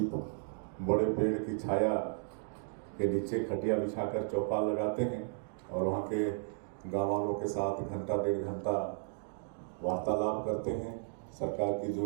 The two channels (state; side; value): silent; left; digital silence